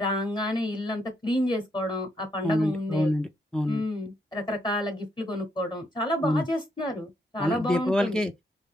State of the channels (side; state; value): both; normal; correlation 0.76